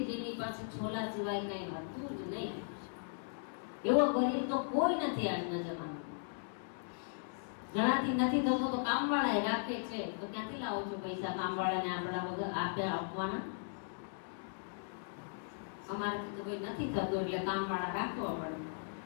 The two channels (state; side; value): silent; right; digital silence